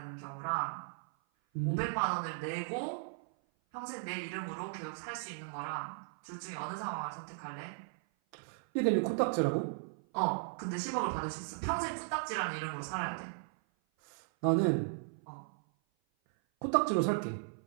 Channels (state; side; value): silent; left; 54 dB below the other